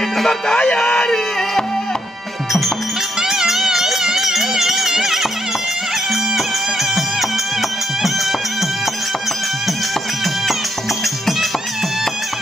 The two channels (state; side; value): normal; both; correlation 0.76